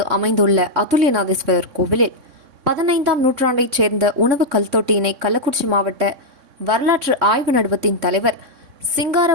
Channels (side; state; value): left; late; 3.6 ms